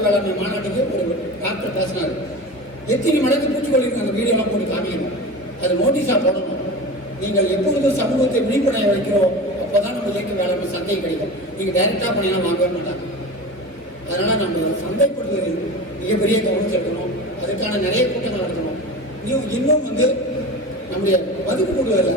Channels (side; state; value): left; late; 1.9 ms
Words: வேளாண்மை மாநாட்டுக்கு ஒரு டாக்டர் பேசினார், எத்தனை மடங்கு பூச்சிக்கொல்லி அந்த வீடியோலாம் போட்டு காமிக்கணும், அது நோட்டீஸாக போடணும். நீங்கள் எப்பொழுது சமூகத்தை விழிப்படைய வைக்கிறோம் அப்போதான் நம்ம இயற்கை வேளாண்மை சந்தை கிடைக்கும். நீங்கள் டைரக்டாக பண்ணியெல்லாம் வாங்கவே மாட்டாங்க. அதனால நம்ம சந்தைப்படுத்துவதில் மிகப்பெரிய கவனம் செலுத்தணும். அதுக்கான நிறைய கூட்டங்கள் நடத்தணும். இன்னும் வந்து நம்முடைய மதிப்பு கூடுதல